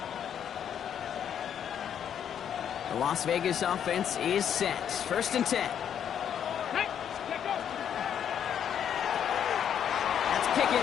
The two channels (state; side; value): quieter; right; 8.9 dB